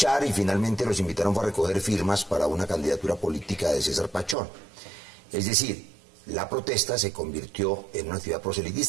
y finalmente los invitaron a recoger firmas para una candidatura política de César Pachón. Es decir, la protesta se convirtió en una actividad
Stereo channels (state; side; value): drops out; left; at 4.4 s